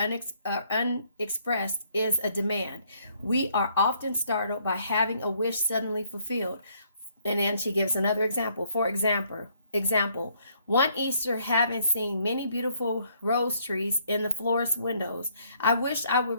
is a demand. We are often startled by having a wish suddenly fulfilled. And then she gives another example. For example, one Easter, having seen many beautiful rose trees in the florist's windows, I wished I would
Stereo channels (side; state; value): both; inverted; correlation -0.68